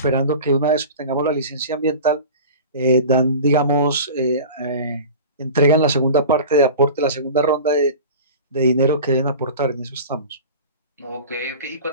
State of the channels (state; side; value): inverted; both; correlation -0.36